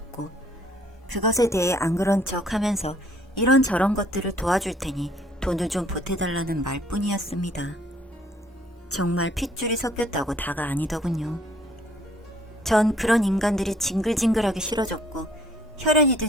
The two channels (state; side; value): normal; both; correlation 0.61